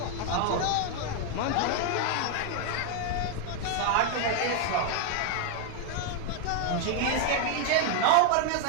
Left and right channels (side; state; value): both; different; correlation 0.01